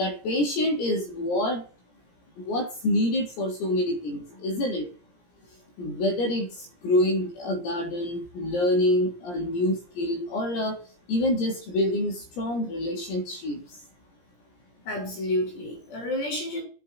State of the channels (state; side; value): late; right; 17 ms